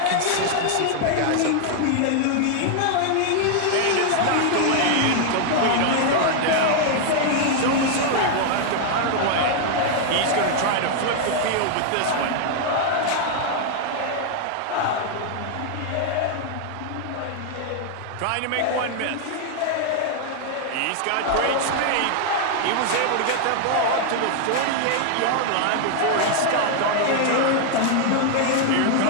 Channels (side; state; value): both; different; correlation 0.00